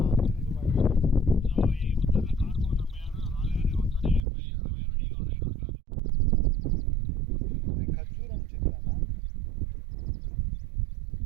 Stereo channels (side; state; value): left; drops out; at 4.2 s